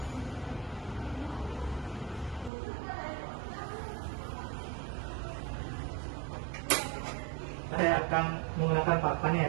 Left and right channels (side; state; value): left; drops out; at 2.5 s